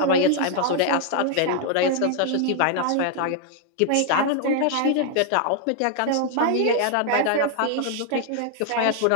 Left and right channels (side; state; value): both; different; correlation 0.00